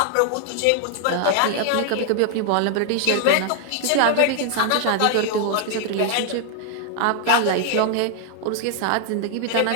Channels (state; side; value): different; both; correlation 0.00